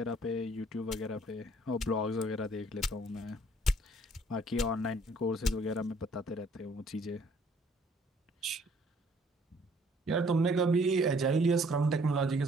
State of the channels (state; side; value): normal; both; correlation 0.60